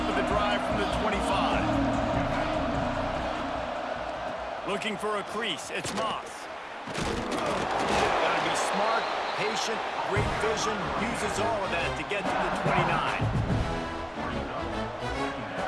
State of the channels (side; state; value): both; identical; correlation 1.00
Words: of the drive from the 25. Looking for a crease. It's Moss. Got to be smart, patient, great vision, uses all of that to get to the 29.